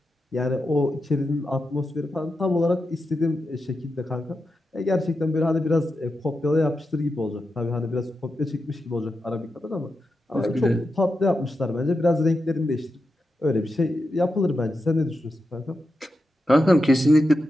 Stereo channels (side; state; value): both; normal; correlation 0.88